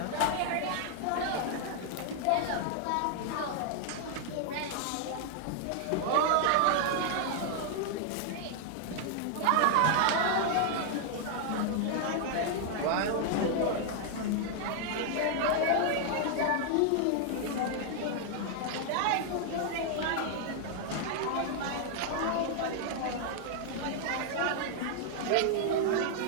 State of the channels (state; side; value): different; both; correlation 0.00